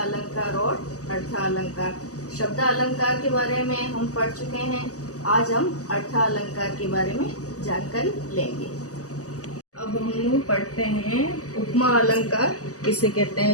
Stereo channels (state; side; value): late; right; 0.66 ms